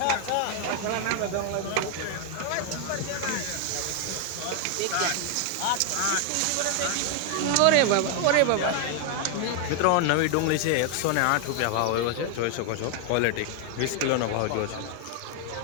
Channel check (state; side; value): different; both; correlation 0.00